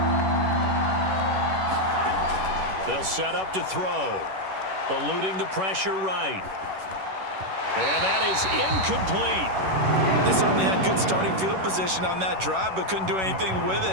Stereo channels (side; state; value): left; late; 11 ms